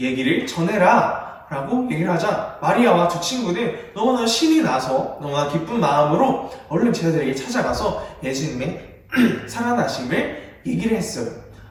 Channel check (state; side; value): identical; both; correlation 1.00